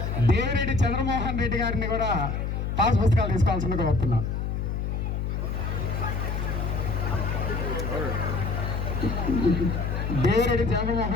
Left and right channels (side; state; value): left; noise; hum, 2 dB below the sound